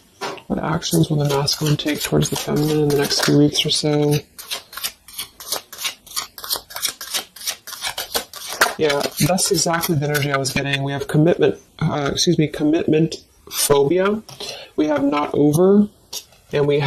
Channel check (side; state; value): both; identical; correlation 1.00